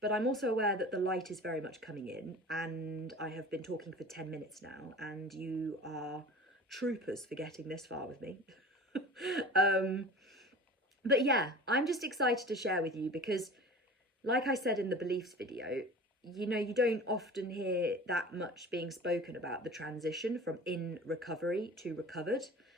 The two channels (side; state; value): both; normal; correlation 0.39